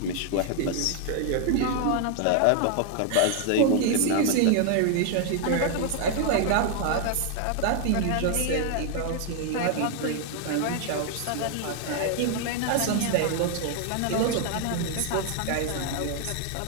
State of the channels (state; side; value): different; both; correlation 0.00